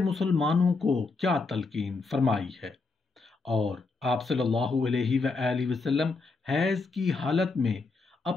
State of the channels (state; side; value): quieter; right; 3.9 dB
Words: کو کیا تلقین فرمائی ہے، اور آپ صلی اللہ علیہ وآلہ وسلم حیض کی حالت میں